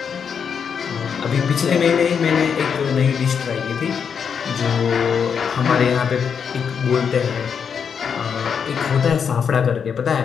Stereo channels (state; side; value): quieter; right; 6.9 dB